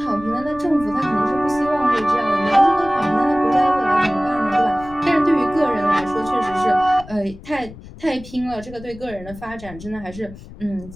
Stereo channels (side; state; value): left; noise; rumble, 17 dB below the sound